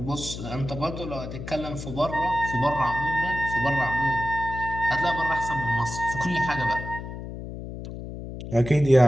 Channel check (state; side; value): noise; left; hum, 9 dB below the sound